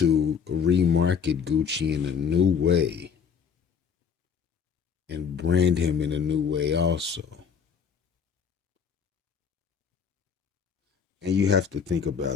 remarket Gucci in a new way and brand him in a new way also. And you have to think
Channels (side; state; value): right; quieter; 6.7 dB